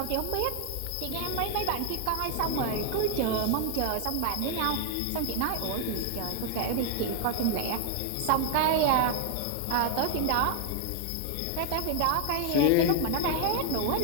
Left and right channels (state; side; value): different; both; correlation 0.00